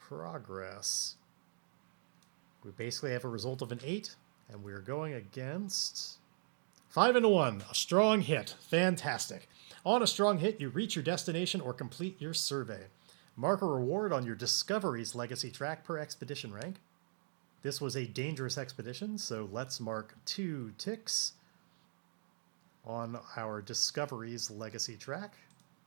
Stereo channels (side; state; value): left; silent; digital silence